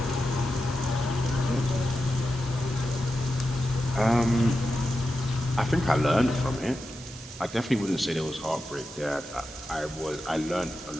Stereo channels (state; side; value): noise; right; hiss, 17 dB below the sound